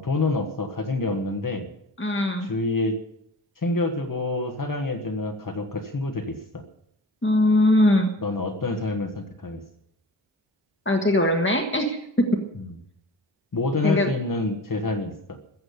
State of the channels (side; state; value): both; normal; correlation 0.42